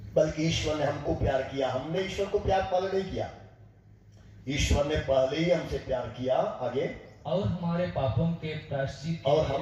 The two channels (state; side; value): identical; both; correlation 1.00